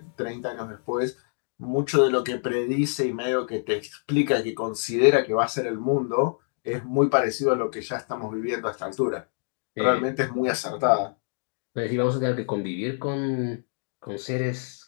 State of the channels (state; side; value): silent; right; digital silence